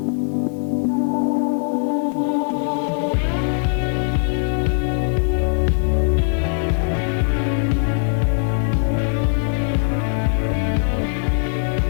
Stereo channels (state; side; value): silent; right; 62 dB below the other